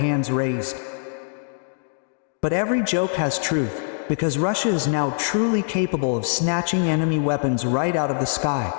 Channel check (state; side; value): silent; right; digital silence